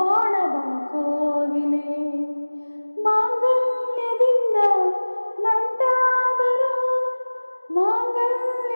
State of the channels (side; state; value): both; inverted; correlation -1.00